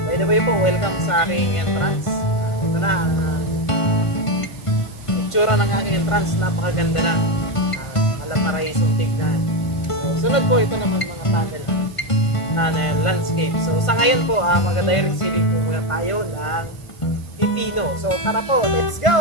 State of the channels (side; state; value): right; late; 1.5 ms